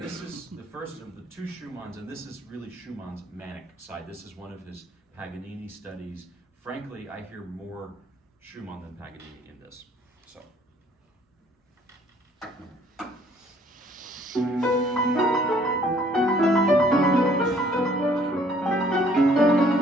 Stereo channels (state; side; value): normal; both; correlation 0.60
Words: is the first of the two Schumanns, and this is really Schumann's manic side. This is one of his Paganini studies. Frankly, I hear more Schumann than Paganini in this. So.